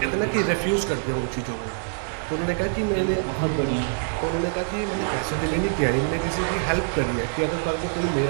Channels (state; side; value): silent; left; digital silence